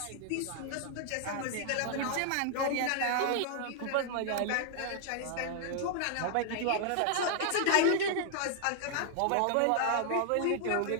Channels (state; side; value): different; both; correlation 0.00